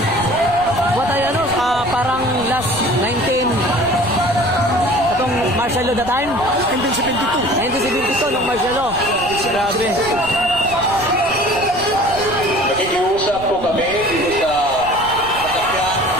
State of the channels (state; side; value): noise; right; rumble, 15 dB below the sound